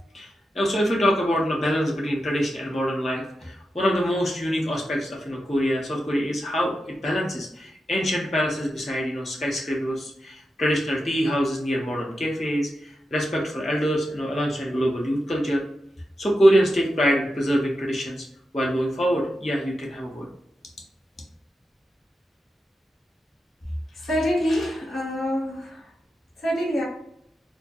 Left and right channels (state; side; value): normal; both; correlation 0.89